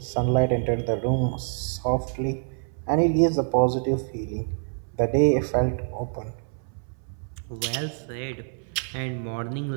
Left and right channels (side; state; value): left; silent; 61 dB below the other